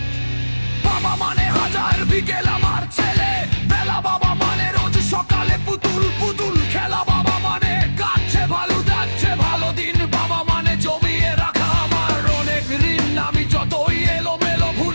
বাবা মানে হাজার বিকেল আমার ছেলে বেলা, বাবা মানে রোজ সকালে পুতুল পুতুল খেলা, বাবা মানে কাটছে ভালো যাচ্ছে ভালো দিন, বাবা মানে জমিয়ে রাখা আমার অনেক ঋণ। আমি যতই এলোমেলো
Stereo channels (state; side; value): inverted; both; correlation -1.00